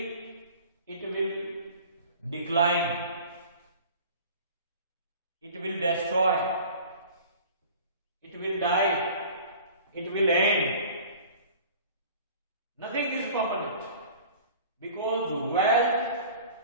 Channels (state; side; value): inverted; both; correlation -0.44